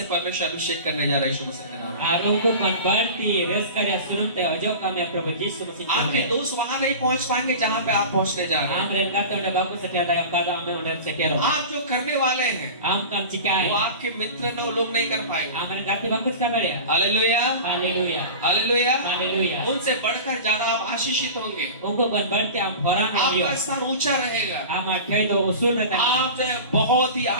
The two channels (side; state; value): both; inverted; correlation -0.34